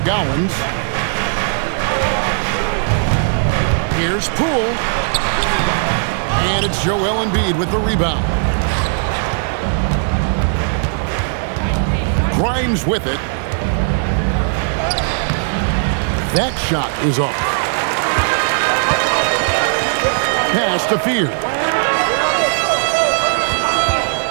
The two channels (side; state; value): left; silent; digital silence